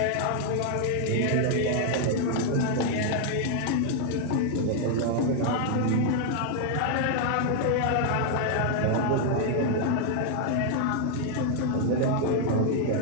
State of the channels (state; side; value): different; both; correlation 0.00